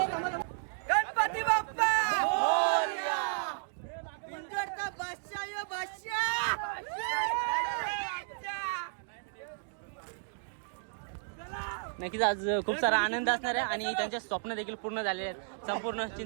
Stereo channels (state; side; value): silent; left; digital silence